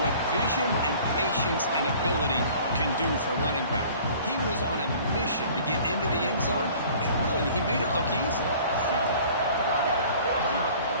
vision and patience and ability can do for a running back. He was on a mission to get into the end zone, and really, he made it look easy.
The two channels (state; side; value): inverted; both; correlation -0.49